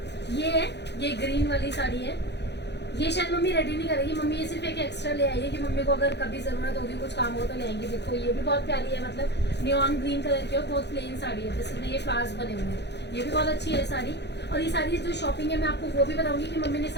ये ग्रीन वाली साड़ी है। ये शायद मम्मी रेडी नहीं करेगी, मम्मी ये सिर्फ एक एक्स्ट्रा ले आई है कि मम्मी को अगर कभी ज़रूरत होगी कुछ काम हो तो ले आएंगे। देखो ये भी बहुत प्यारी है, मतलब नियॉन ग्रीन कलर की और बहुत प्लेन साड़ी है जिसमें ये फ्लावर्स बने हुए हैं। ये भी बहुत अच्छी है साड़ी। और ये सारी जो शॉपिंग है मैं आपको वो भी बताऊंगी कि मम्मी ने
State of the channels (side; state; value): right; late; 0.50 ms